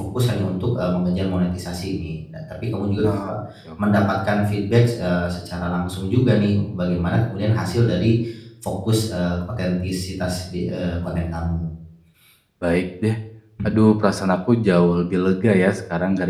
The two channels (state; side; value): identical; both; correlation 1.00